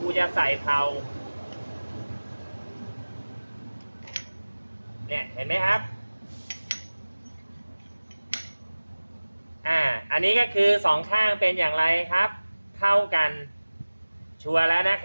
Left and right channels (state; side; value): inverted; both; correlation -1.00